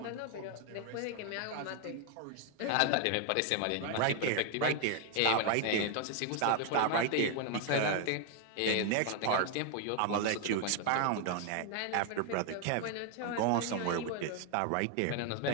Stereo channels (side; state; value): both; different; correlation 0.01